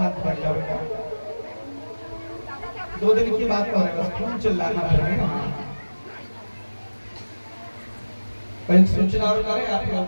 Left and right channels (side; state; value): both; inverted; correlation -1.00